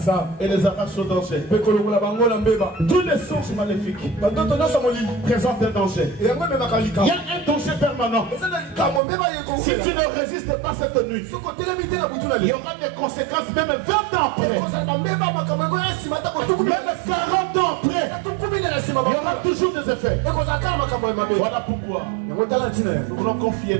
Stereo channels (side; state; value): left; drops out; at 9.0 s